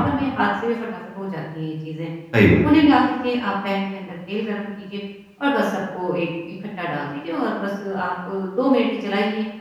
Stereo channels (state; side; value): identical; both; correlation 1.00